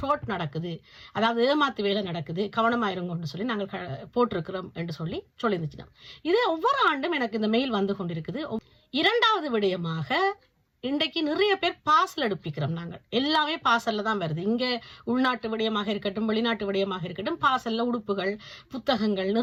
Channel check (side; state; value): both; identical; correlation 1.00